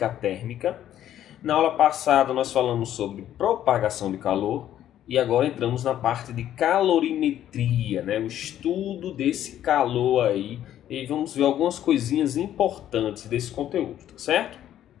térmica. Na aula passada nós falamos sobre propagação de calor e agora entramos na parte de calorimetria, né? O estudo desse calor aí, e vamos ver algumas coisinhas importantes desse conteúdo, tá certo?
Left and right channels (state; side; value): quieter; right; 11.5 dB